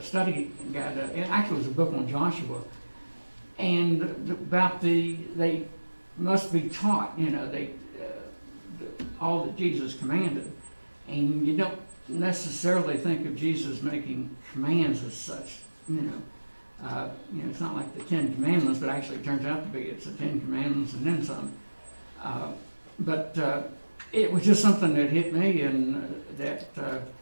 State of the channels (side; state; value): both; inverted; correlation -1.00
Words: study guide. It actually was a book on Joshua, and about they must be taught, all that Jesus commanded, and you don't necessarily think of Jesus making commands as such. It's not like the Ten Commandments, but actually it turns out to be it's the Ten Commandments and then some. But it was just something that hit me, and that